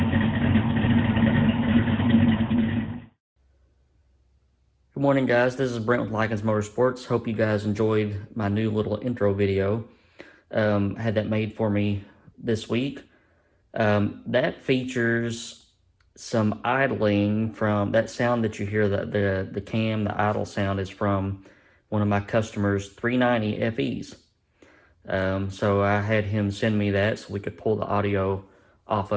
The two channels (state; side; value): identical; both; correlation 1.00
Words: morning, guys. This is Brent with Lykins Motorsports. Hope you guys enjoyed my new little intro video. I had that made for me this week. That features some idling from that sound that you hear, the cam, the idle sound is from one of my customers' 390 FEs. So I had him send me that so we could pull the audio off